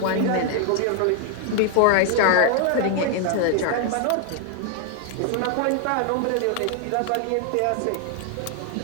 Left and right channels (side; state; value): both; different; correlation 0.00